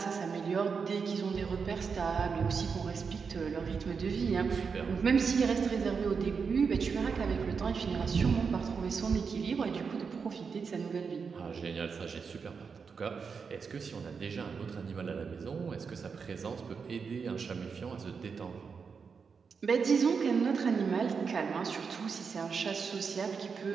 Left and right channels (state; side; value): quieter; left; 5.6 dB